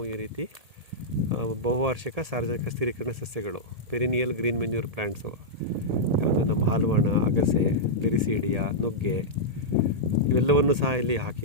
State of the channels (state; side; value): late; left; 1.8 ms